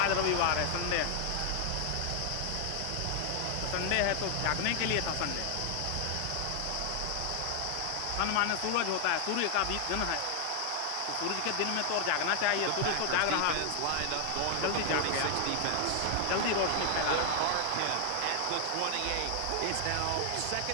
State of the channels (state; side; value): different; both; correlation 0.00